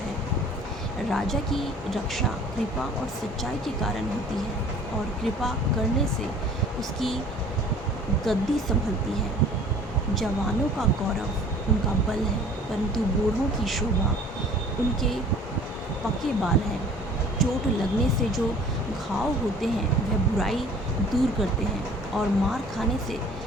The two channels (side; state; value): both; normal; correlation 0.49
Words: राजा की रक्षा कृपा और सच्चाई के कारण होती है, और कृपा करने से उसकी गद्दी संभलती है। जवानों का गौरव उनका बल है, परंतु बूढ़ों की शोभा उनके पके बाल हैं। चोट लगने से जो घाव होते हैं वह बुराई दूर करते हैं और मार खाने से